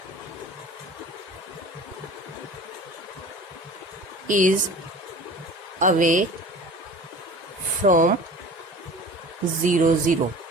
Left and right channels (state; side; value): normal; both; correlation 0.40